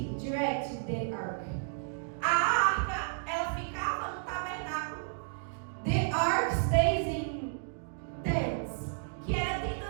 direct the ark. A arca, ela ficava no tabernáculo, The ark stays in tents. que era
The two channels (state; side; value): silent; left; digital silence